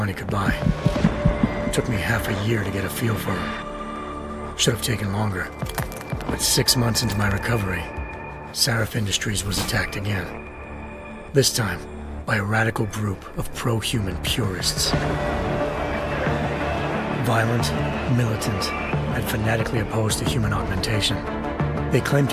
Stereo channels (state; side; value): identical; both; correlation 1.00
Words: could buy. It took me half a year to get a feel for her. Should have taken longer. But 6 months into my recovery, Sarif Industries was attacked again. This time, by a radical group of pro-human purists. Violent, militant, and fanatically opposed to human augmentation. They claimed